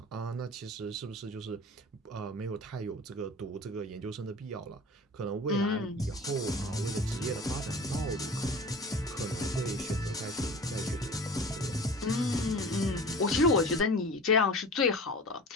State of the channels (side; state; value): both; normal; correlation 0.38